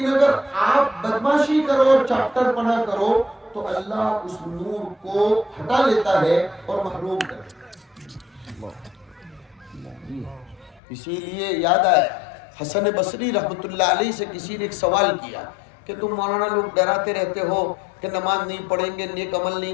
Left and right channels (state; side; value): drops out; right; at 10.8 s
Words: اگر آپ بدماشی کرو اور چاپٹر پنا کرو تو اللہ اس نور کو ہٹا لیتا ہے اور محروم کر دیتا ہے۔ اسی لیے یاد آیا حسن بصری رحمت اللہ علیہ سے کسی نے ایک سوال کیا کہ تم مولانا لوگ ڈراتے رہتے ہو کہ نماز نہیں پڑھیں گے، نیک عمل